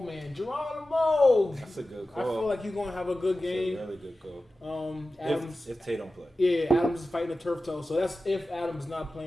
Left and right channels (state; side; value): normal; both; correlation 0.94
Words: man, Geronimo. That's a good I call. feel like he's gonna have a good game. That's a really good call. Adams. If Tay don't play. Yeah, Adams is fighting a turf toe, so that's if Adams is not